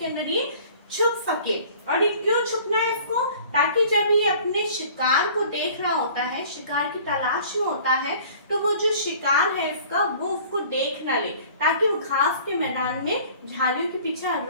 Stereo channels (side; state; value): both; inverted; correlation -0.49